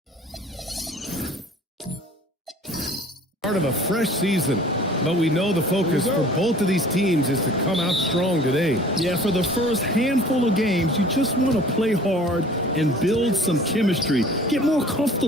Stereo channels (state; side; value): normal; both; correlation 0.48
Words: Part of a fresh season, but we know the focus for both of these teams is to come out strong today. Yeah, for the first handful of games, you just want to play hard and build some chemistry. Get more